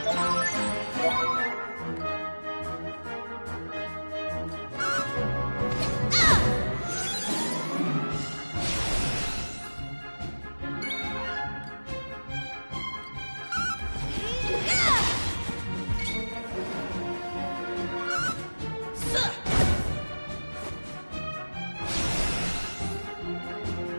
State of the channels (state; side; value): inverted; both; correlation -1.00